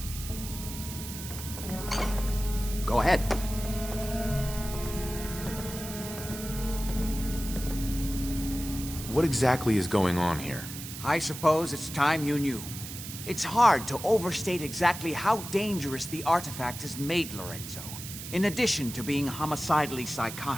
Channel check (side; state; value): right; noise; hiss, 10 dB below the sound